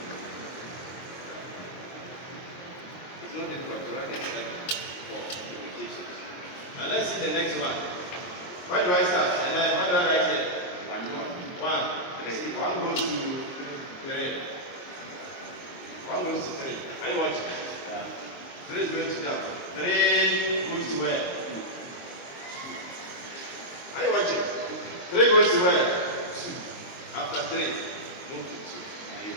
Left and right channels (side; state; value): right; late; 23 ms